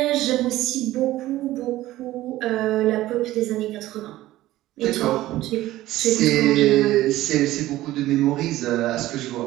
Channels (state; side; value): quieter; left; 15.8 dB